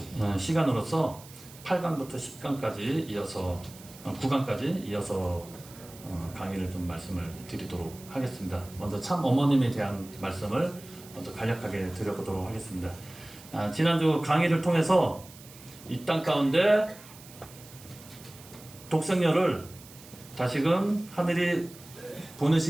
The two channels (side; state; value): right; noise; hiss, 19 dB below the sound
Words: 시간으로서 8강부터 10강까지 이어서 9강까지 이어서 강의를 좀 말씀을 드리도록 하겠습니다. 먼저 참 어머님에 대한 말씀을 먼저 간략하게 드려보도록 하겠습니다. 지난주 강의를 통해서 이 땅 가운데 독생녀를 다시금 하늘이